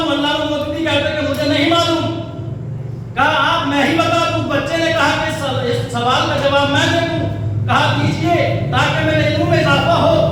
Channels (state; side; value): identical; both; correlation 1.00